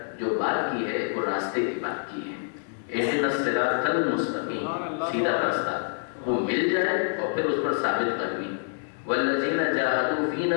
جو بات کی ہے وہ راستے کی بات کی ہے. اہدنا الصراط المستقیم، سیدھا راستہ وہ مل جائے اور پھر اس پر ثابت قدمی. والذین جاہدوا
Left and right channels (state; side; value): silent; right; digital silence